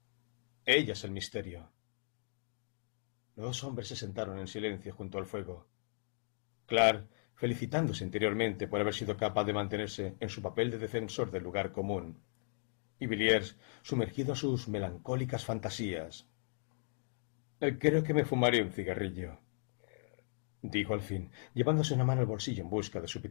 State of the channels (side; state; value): right; silent; digital silence